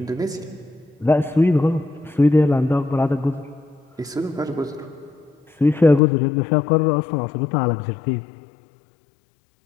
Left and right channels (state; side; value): drops out; right; at 6.0 s